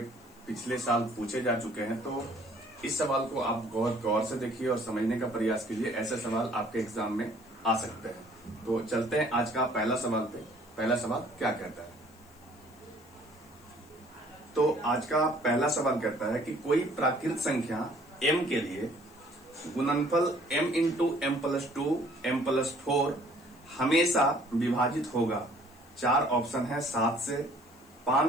पिछले साल पूछे जा चुके हैं। तो इस सवाल को आप बहुत गौर से देखिए और समझने का प्रयास कीजिए। ऐसे सवाल आपके एग्जाम में आ सकते हैं। तो चलते हैं आज का पहला सवाल पे। पहला सवाल क्या कहता है? तो आज का पहला सवाल कहता है कि कोई प्राकृत संख्या m के लिए गुणनफल m into M plus 2 m plus 4 हमेशा विभाजित होगा। 4 ऑप्शन है, 7 से,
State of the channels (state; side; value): noise; left; hiss, 28 dB below the sound